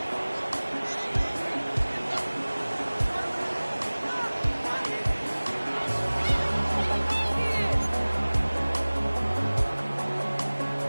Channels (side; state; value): both; inverted; correlation -1.00